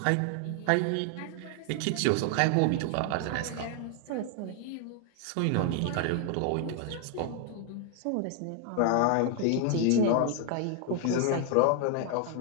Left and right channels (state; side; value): different; both; correlation 0.00